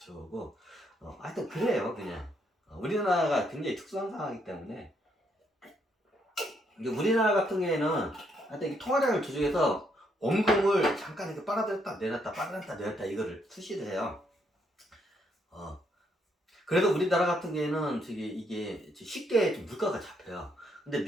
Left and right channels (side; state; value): both; normal; correlation 0.74